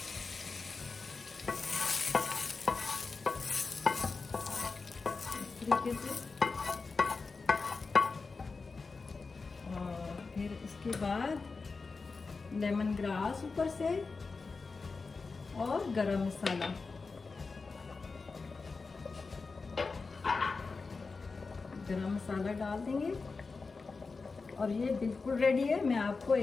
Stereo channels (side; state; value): right; quieter; 4.3 dB